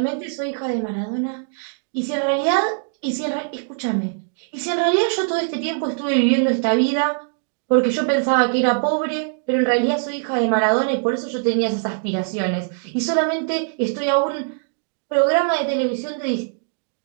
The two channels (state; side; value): silent; left; digital silence